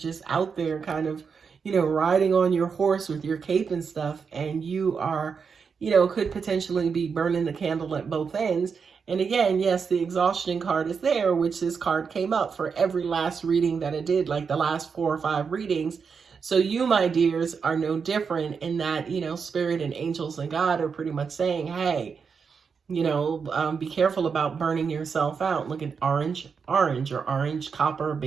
out there kind of, riding on your horse with your cape and stuff. And you are, could potentially be burning the candle at both ends. And again, yes, the exhaustion card is there, which this card came up for every last reading that I did, like the last 4 or 5 readings. So you, my dears, are no different in that, spirit and angels and God are pretty much saying, hey, be careful about burning yourself out. Look at orange or orange, copper,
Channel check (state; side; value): quieter; left; 5.8 dB